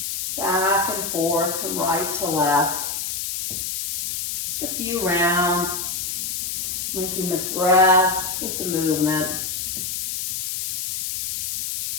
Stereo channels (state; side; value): noise; left; hiss, 2 dB below the sound